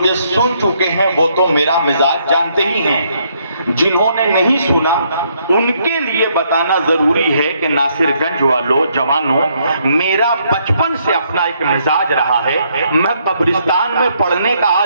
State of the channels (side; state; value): both; inverted; correlation -0.71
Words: سن چکے ہیں وہ تو میرا مزاج جانتے ہی ہیں۔ جنہوں نے نہیں سنا ان کے لیے بتانا ضروری ہے کہ ناصر گنج والوں، جوانوں، میرا بچپن سے اپنا ایک مزاج رہا ہے۔ میں قبرستان میں پڑھنے کا